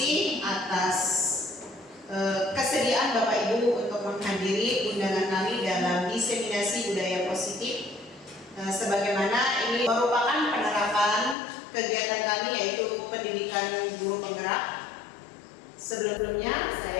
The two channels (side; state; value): right; drops out; at 11.4 s